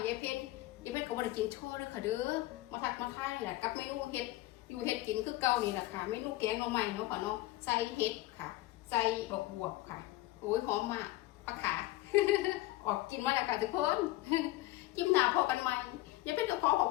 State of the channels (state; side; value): quieter; right; 17.7 dB